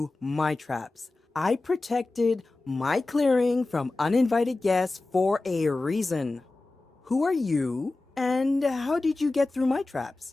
my traps? I protected my clearing from uninvited guests for a reason. Who are you, and how did you get through my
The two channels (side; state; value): right; quieter; 3.2 dB